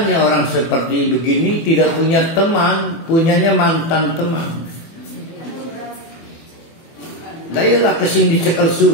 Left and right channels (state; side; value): late; right; 24 ms